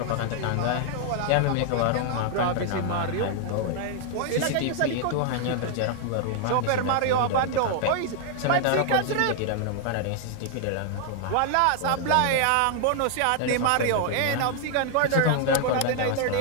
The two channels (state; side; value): different; both; correlation 0.00